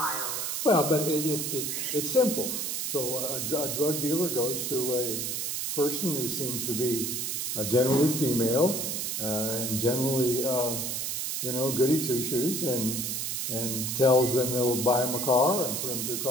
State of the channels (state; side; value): noise; right; hiss, 2 dB below the sound